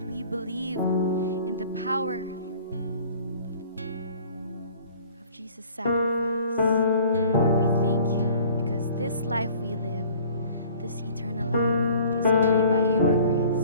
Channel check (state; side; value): inverted; both; correlation -0.50